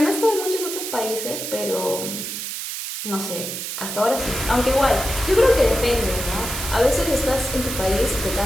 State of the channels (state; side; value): noise; right; hiss, 5 dB below the sound